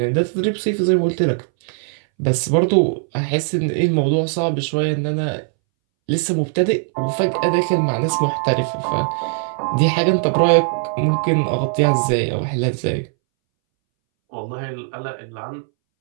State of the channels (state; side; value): silent; left; 64 dB below the other